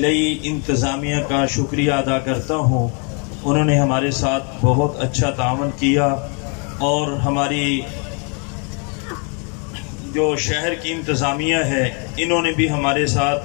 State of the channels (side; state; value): right; quieter; 37.1 dB